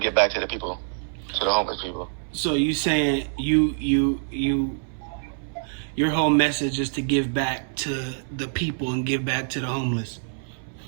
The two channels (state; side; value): silent; left; 59 dB below the other